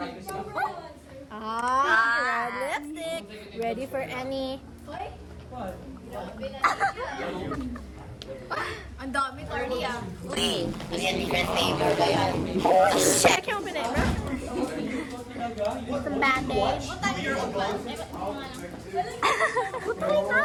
Red lipstick. Ready for any. Ang dami, Cardi ah. Check yung pinema. Some bandage.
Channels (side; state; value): both; identical; correlation 1.00